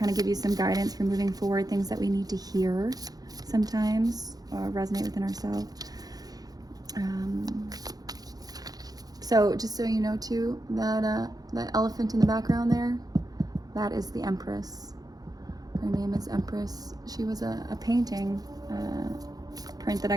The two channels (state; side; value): late; left; 0.18 ms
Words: of give you some guidance for moving forward, things that we need to hear sometimes, resonate within ourselves. So just so you know too, that elephant in the background there, that is the Empress. Her name is Empress. She was a painting print that I